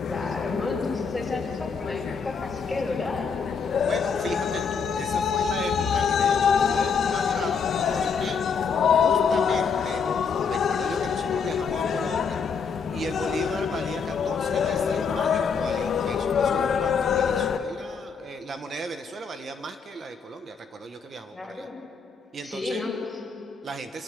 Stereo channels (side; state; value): right; quieter; 5.7 dB